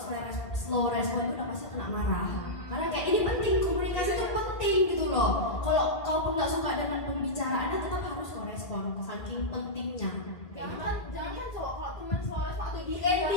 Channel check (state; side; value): late; right; 1.8 ms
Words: slow respon itu udah pasti kena marah. Karena kayak ini penting, komunikasi itu penting gitu loh. Kalau kau pun nggak suka dengan pembicaraannya tetap harus kau respon, saking pentingnya. Jangan cowok kalau teman selalu atau di ND